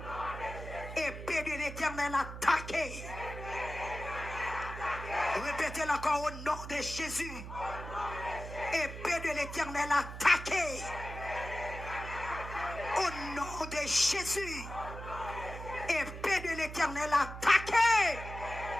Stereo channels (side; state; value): right; noise; hum, 10 dB below the sound